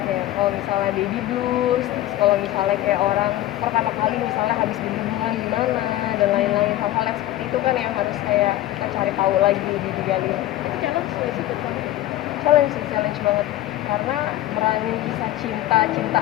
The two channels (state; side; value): quieter; right; 14.4 dB